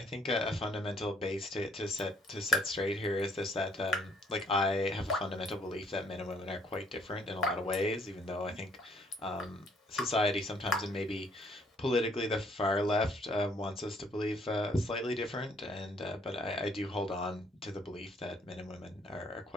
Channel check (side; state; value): both; normal; correlation 0.64